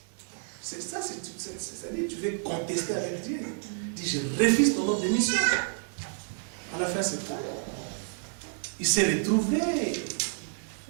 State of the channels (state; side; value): silent; left; 58 dB below the other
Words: C'est ça, c'est-à-dire, tu veux contester avec Dieu. Il dit, je refuse ton ordre de mission. À la fin, c'est tout. Il s'est retrouvé.